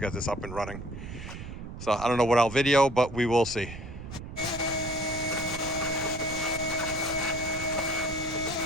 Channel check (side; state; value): right; noise; rumble, 10 dB below the sound